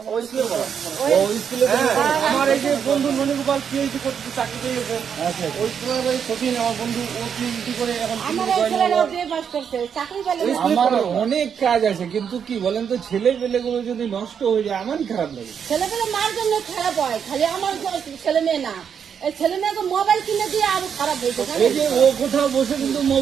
আমার এই যে বন্ধু মণিগোপাল পিএইচডি করতে চাকরি পেয়েছে, ওই স্কুলের সচিন আমার বন্ধু, ও পিএইচডি করে এখন আমার অনেক কাজ আছে, কিন্তু কি বলেন তো, ছেলে পেলে গুলো যদি নষ্ট হয়ে যায় আমারই খারাপ লাগে। ছেলে পেলে মার জন্য খারাপ হয়, খালি আমার ছেলে মেয়ে না, এই ছেলে মেয়েকে মোবাইল কিনে দিয়ে আরো খারাপ হয়েছে। এই যে ও কোথাও বসে কিন্তু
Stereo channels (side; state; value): left; quieter; 7.5 dB